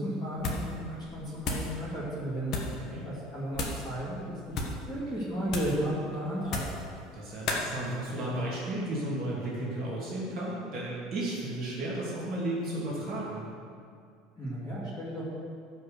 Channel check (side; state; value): both; normal; correlation 0.48